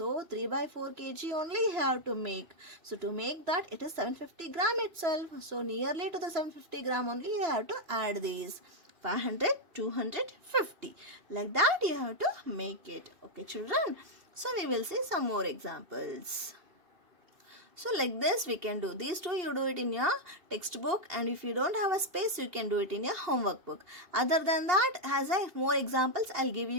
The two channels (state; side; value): late; left; 2.6 ms